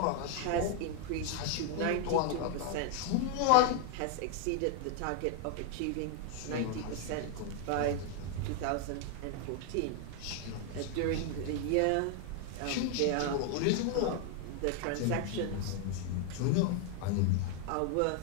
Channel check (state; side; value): different; both; correlation 0.00